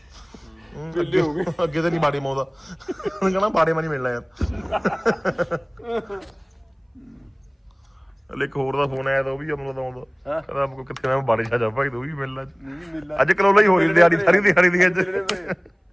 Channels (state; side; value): identical; both; correlation 1.00